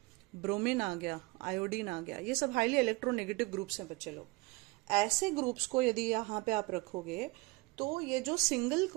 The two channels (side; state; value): left; quieter; 24.3 dB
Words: ब्रोमीन आ गया, आयोडीन आ गया। ये सब हाईली इलेक्ट्रोनेगेटिव ग्रुप्स हैं बच्चे लोग। ऐसे ग्रुप्स को यदि यहाँ पे आप रखोगे तो ये जो सिंगल